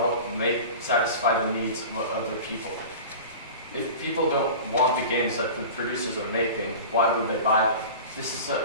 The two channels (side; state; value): both; inverted; correlation -0.35